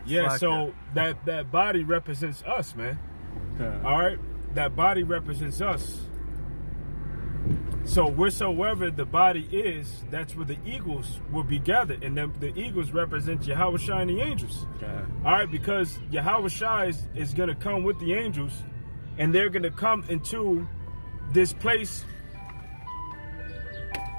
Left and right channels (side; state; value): both; inverted; correlation -1.00